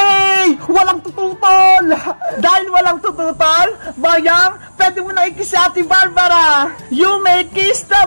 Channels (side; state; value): both; inverted; correlation -1.00